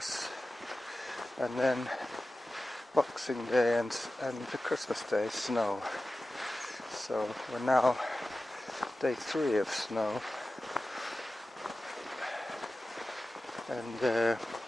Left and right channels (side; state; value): both; normal; correlation 0.95